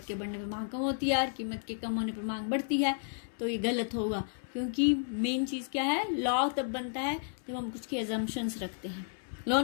के बढ़ने पर मांग कम होती है और कीमत के कम होने पर मांग बढ़ती है, तो ये गलत होगा। क्योंकि मेन चीज़ क्या है? लॉ तब बनता है जब हम कुछ की एजम्पशंस रखते हैं।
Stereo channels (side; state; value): right; silent; 56 dB below the other